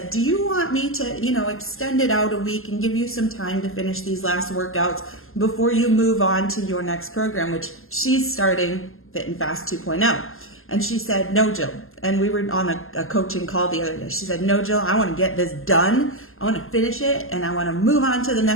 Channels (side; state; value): right; late; 0.61 ms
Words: do you want me to, extend it out a week and give you some time to finish these last workouts before you move on to your next program, which she's starting Fit and Fast 2.0. And she said, no, Jill. And we were on a coaching call the other day. She said, no, Jill, I want to get this done. I want to finish it. And I want to move on to the